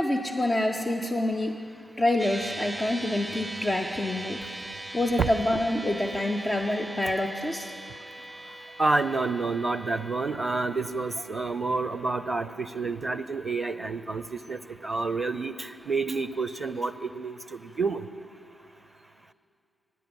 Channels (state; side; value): normal; both; correlation 0.87